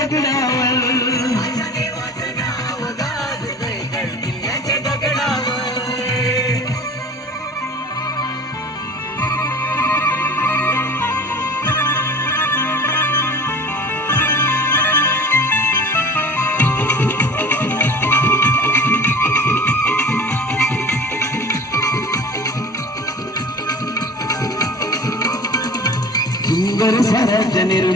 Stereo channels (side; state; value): both; normal; correlation 0.41